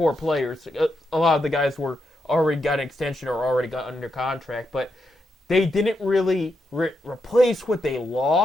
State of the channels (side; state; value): both; normal; correlation 0.83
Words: players. A lot of the guys were already got an extension or already got under contract, but they didn't really replace what they